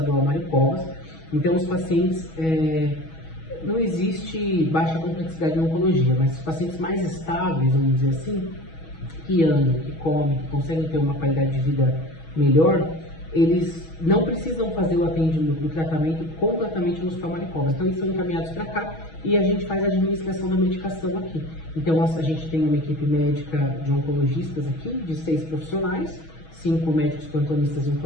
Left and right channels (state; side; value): late; right; 6.2 ms